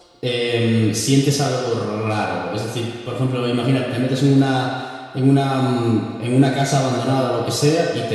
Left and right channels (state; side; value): identical; both; correlation 1.00